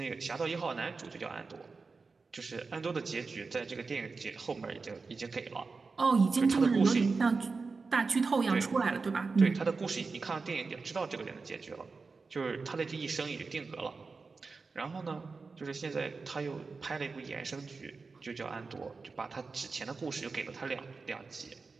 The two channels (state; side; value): quieter; left; 4.3 dB